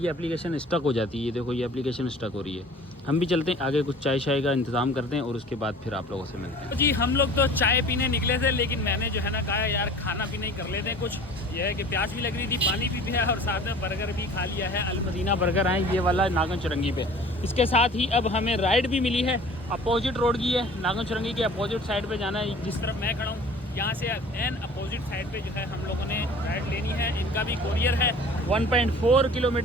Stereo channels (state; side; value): normal; both; correlation 0.45